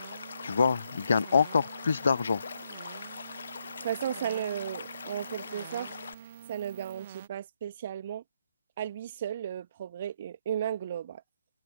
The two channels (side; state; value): both; inverted; correlation -0.76